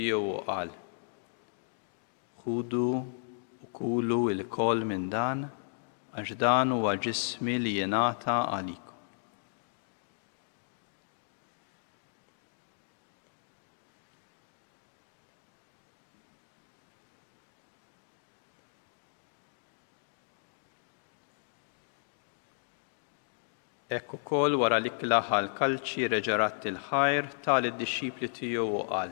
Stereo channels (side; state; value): right; silent; digital silence